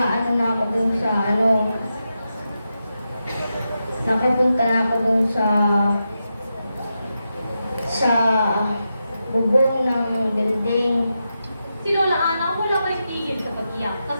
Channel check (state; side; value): inverted; both; correlation -0.88